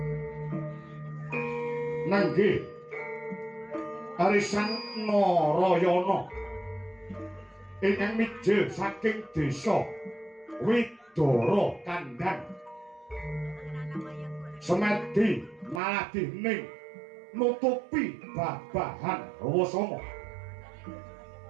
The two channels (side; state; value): left; drops out; at 15.8 s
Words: nenggih arisan Narayana ingkang mijil saking desa Widara Kandhang semedi maladihning nutupi babahan Rawasanga